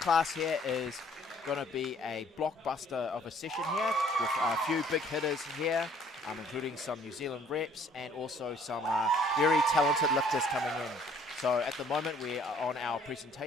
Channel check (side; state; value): both; normal; correlation 0.59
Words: here is going to be a blockbuster of a session here with a few big hitters here, including some New Zealand reps and also some very talented lifters coming in. So at the moment we are on our